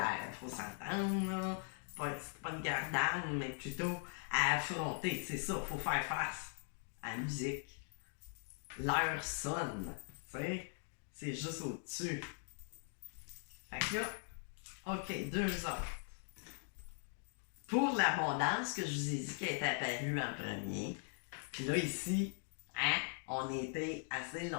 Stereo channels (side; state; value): right; silent; 51 dB below the other